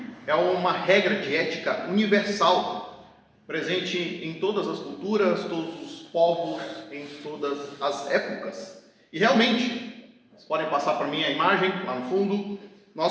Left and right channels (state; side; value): identical; both; correlation 1.00